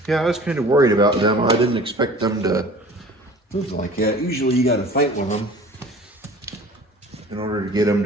Yeah, I was kind of worried about them. I didn't expect them to move like that. Usually you got to fight with them in order to get them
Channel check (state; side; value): normal; both; correlation 0.45